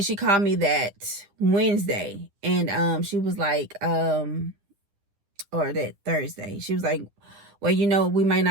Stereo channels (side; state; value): left; late; 10 ms